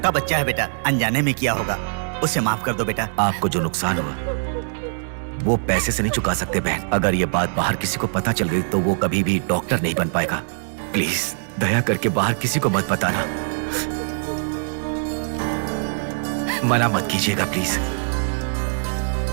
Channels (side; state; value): left; silent; digital silence